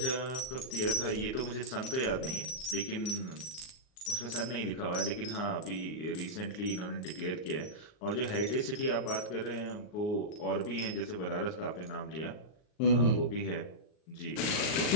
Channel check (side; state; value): right; late; 39 ms